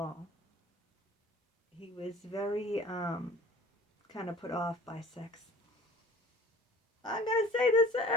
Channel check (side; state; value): both; normal; correlation 0.47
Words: He was very kind of put off by sex. I'm going to say this to